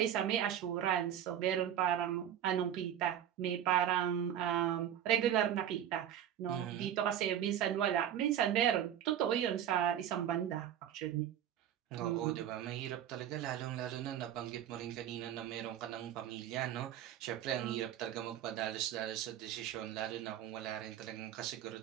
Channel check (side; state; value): left; quieter; 10.3 dB